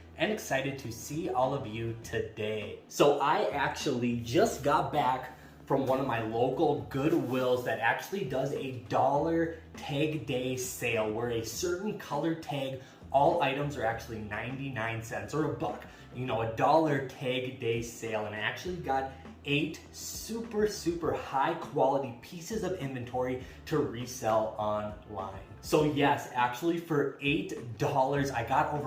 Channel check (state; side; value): identical; both; correlation 1.00